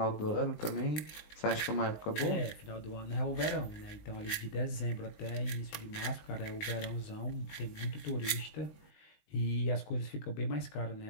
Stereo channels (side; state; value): right; late; 19 ms